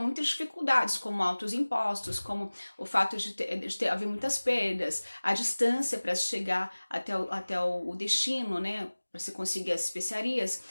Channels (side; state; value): both; inverted; correlation -1.00